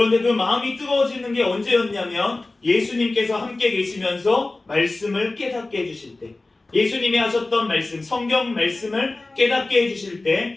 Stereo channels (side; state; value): right; quieter; 3.1 dB